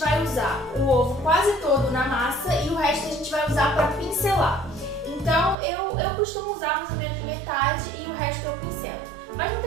usar o ovo quase todo na massa e o resto a gente vai usar para pincelar. Então eu costumo usar mais ou menos metade e o resto eu pincelo. Mas não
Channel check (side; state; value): left; drops out; at 5.6 s